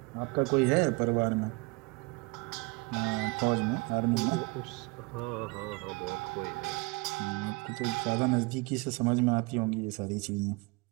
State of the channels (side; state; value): left; quieter; 26.7 dB